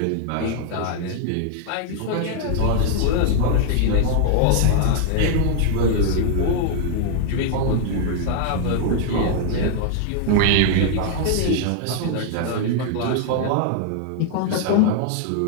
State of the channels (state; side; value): different; both; correlation 0.00